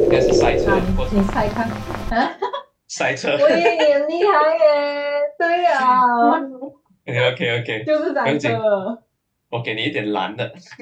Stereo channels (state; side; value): identical; both; correlation 1.00